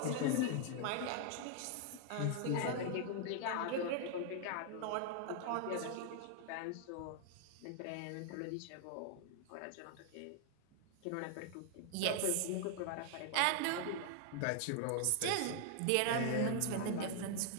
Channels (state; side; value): different; both; correlation 0.00